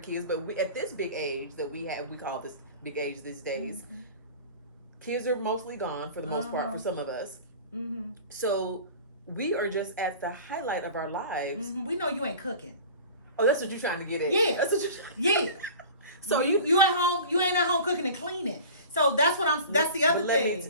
kids, but at this big age that we call this big age these days, kids are mostly gone for the most part for some of us. Mm-hmm. So we are just at the highlight of our lives. Mm-hmm. We know you ain't cooking. Oh, that's what you're trying to get at. Yeah. That's what you're Yeah. So you at home, you ain't at home cooking and cleaning. So that's the other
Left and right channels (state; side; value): inverted; both; correlation -0.40